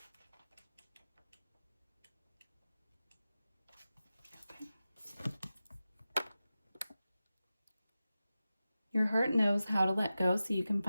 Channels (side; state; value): both; inverted; correlation -0.94